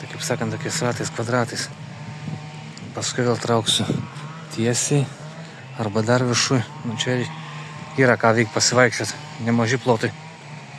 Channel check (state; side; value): identical; both; correlation 1.00